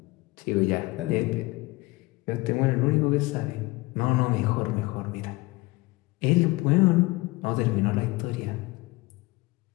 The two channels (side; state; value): right; quieter; 22.5 dB